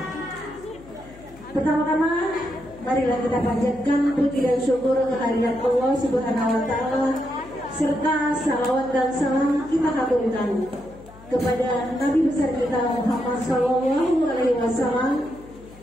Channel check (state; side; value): noise; left; hum, 21 dB below the sound